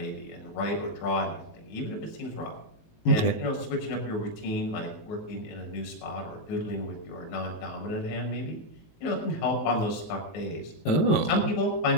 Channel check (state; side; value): late; right; 19 ms